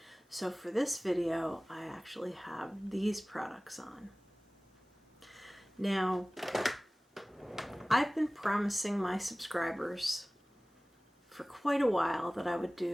So for this video, I actually have these products on. Now, I've been promising my subscribers for quite a while that I would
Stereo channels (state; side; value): normal; both; correlation 0.98